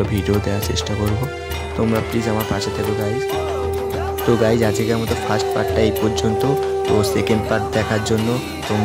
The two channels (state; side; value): identical; both; correlation 1.00